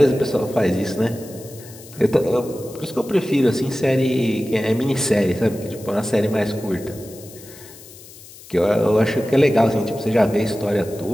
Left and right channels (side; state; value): left; noise; hiss, 19 dB below the sound